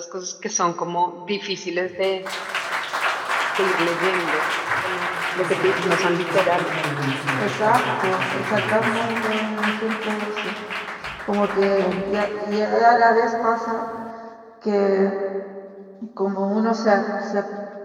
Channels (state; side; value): identical; both; correlation 1.00